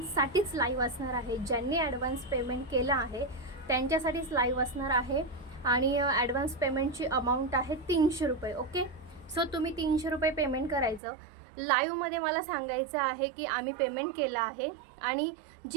लाईव्ह असणार आहे. ज्यांनी ॲडव्हान्स पेमेंट केलं आहे त्यांच्यासाठीच लाईव्ह असणार आहे. आणि ॲडव्हान्स पेमेंटची अमाऊंट आहे 300 रुपये. ओके, सो तुम्ही 300 रुपये पेमेंट करायचं. लाईव्हमध्ये मला सांगायचं आहे की आम्ही पेमेंट केलं आहे आणि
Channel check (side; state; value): left; drops out; at 11.0 s